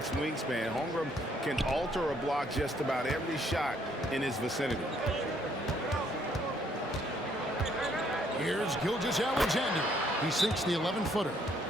wingspan. Holmgren can alter a block just about every shot in his vicinity. Here's Gilgeous-Alexander. He sinks the 11-footer.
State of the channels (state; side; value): normal; both; correlation 0.67